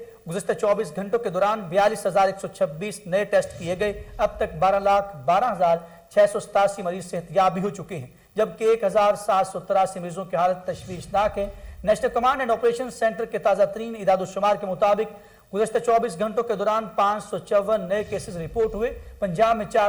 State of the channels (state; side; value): identical; both; correlation 1.00